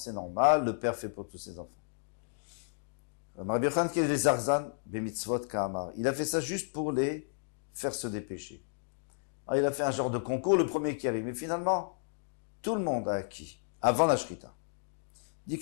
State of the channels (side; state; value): right; silent; digital silence